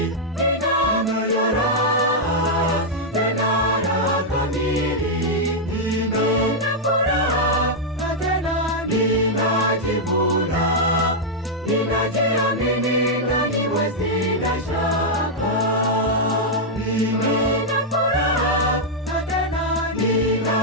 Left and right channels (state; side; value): normal; both; correlation -0.04